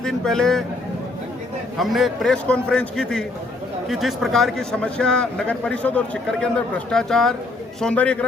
दिन पहले हमने एक प्रेस कॉन्फ्रेंस की थी कि जिस प्रकार की समस्या नगर परिषद और सीकर के अंदर भ्रष्टाचार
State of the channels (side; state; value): right; quieter; 3.1 dB